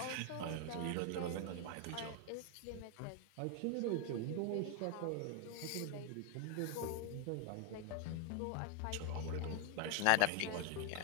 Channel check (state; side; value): different; both; correlation 0.01